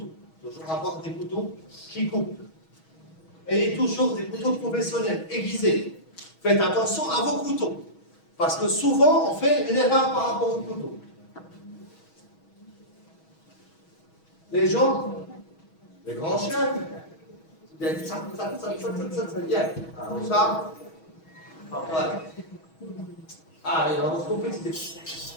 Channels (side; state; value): right; late; 6.2 ms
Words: Toujours avoir des couteaux qui coupent. Et toujours des couteaux professionnels, aiguisés. Faites attention à vos couteaux. Parce que souvent, on fait une erreur par rapport au couteau. Les gens, les grands chefs, comme ça. Voilà. Ah, il a compris que c'était